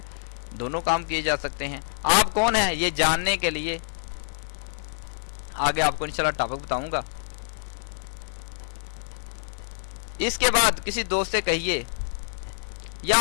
دونوں کام کیے جا سکتے ہیں۔ آپ کون ہیں یہ جاننے کے لیے آگے آپ کو انشاءاللہ ٹاپک بتاؤں گا۔ اس کے بعد کسی دوست سے کہیے، یا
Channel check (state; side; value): silent; right; 57 dB below the other